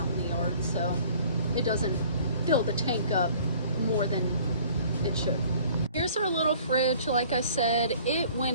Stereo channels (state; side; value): inverted; both; correlation -0.52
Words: in the yard, so it doesn't fill the tank up more than it should. Here's our little fridge. Like I said, it went